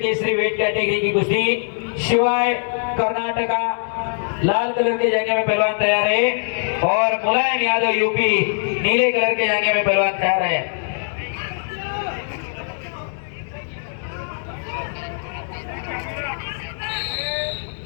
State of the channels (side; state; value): right; silent; digital silence